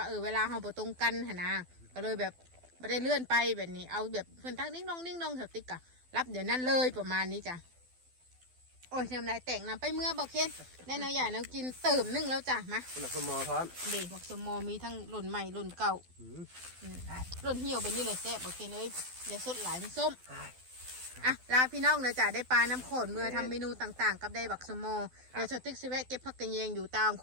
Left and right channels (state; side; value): late; left; 12 ms